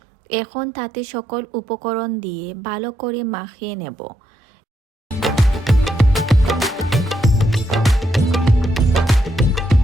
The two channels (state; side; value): normal; both; correlation 0.79